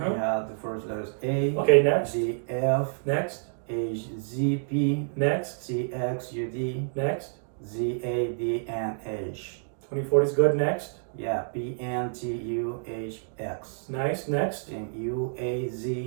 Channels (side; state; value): left; silent; digital silence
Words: have the first letters A. Okay, next. D, F. Next. H, Z, P. Next. C, X, U, D. Next. Z, A, D, N, H. 2040 is good. Next. Yeah, P, N, T, U, H, X. Nice. Next. And U, A,